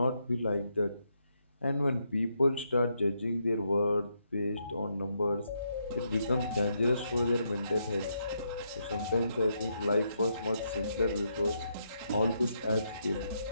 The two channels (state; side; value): inverted; both; correlation -0.79